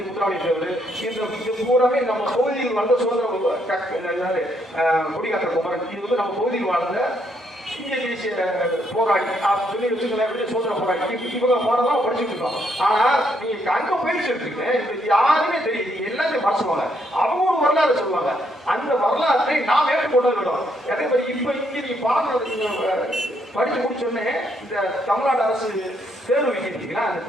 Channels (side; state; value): both; normal; correlation 0.73